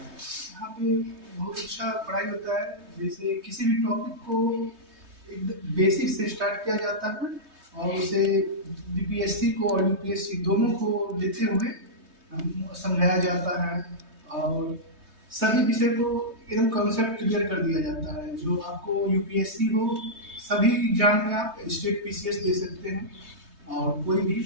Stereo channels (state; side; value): late; left; 3.2 ms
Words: बहुत अच्छा पढ़ाई होता है। जैसे किसी भी टॉपिक को एक बेसिक से स्टार्ट किया जाता है और उसे बीपीएससी को और यूपीएससी दोनों को लेते हुए समझाया जाता है और सभी विषय को एकदम कॉन्सेप्ट क्लियर कर दिया जाता है। जो आपको यूपीएससी हो, सभी एग्जाम में आप स्टेट पीसीएस दे सकते हैं और कोई भी